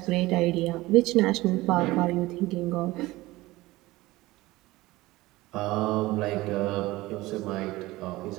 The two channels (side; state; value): left; quieter; 19.2 dB